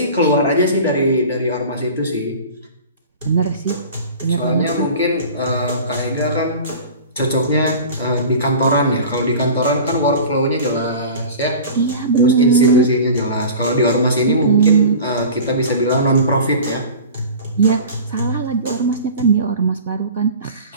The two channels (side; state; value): both; inverted; correlation -0.38